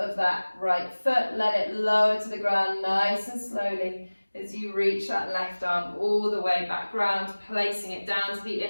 that right foot. Let it lower to the ground nice and slowly as you reach that left arm all the way back round, placing it down to the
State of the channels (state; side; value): inverted; both; correlation -1.00